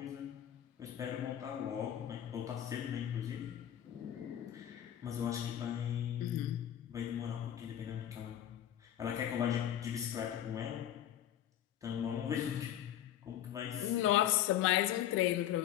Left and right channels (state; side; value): quieter; right; 11.2 dB